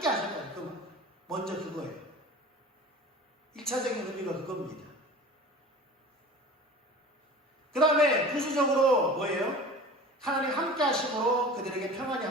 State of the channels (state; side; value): normal; both; correlation 0.38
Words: 하셨다는 그 먼저 그거예요. 1차적인 의미가 그겁니다. 그 다음에 부수적으로 뭐예요? 하나님 함께 하심으로 그들에게 평안이